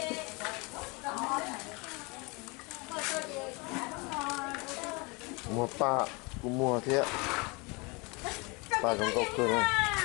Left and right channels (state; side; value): quieter; right; 28.1 dB